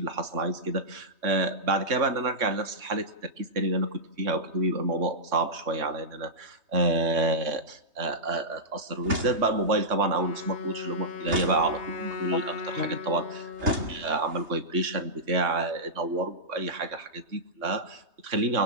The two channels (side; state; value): left; late; 3.2 ms